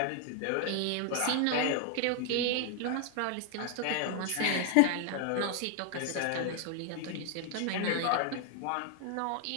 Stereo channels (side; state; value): both; different; correlation 0.00